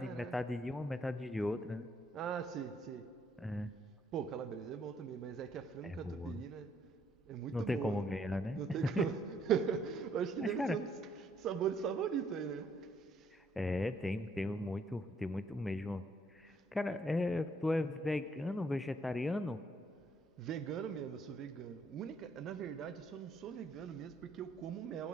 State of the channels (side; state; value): both; normal; correlation 0.69